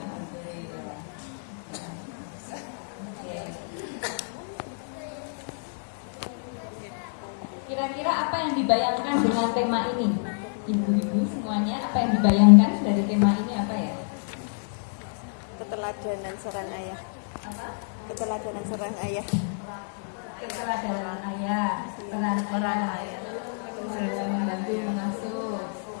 Kira-kira apa yang dibayangkan dengan tema ini? Ibu-ibu semuanya, apa yang dibayangkan dari tema ini apa ya? Keteladanan seorang ayah. Apa? Keteladanan seorang ayah. Keteladanan ayah, peran ayah dalam membantu mengasuh.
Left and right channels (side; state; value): right; silent; digital silence